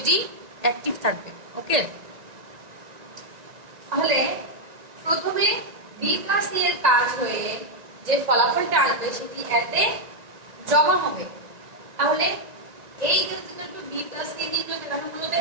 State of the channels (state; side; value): late; left; 1.9 ms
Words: অ্যাক্টিভ থাকবে। ওকে, তাহলে প্রথমে b প্লাস c এর কাজ হয়ে যে ফলাফলটা আসবে সেটি এতে জমা হবে। তাহলে a equal to b plus c নির্ণয় করে আমরা মূলত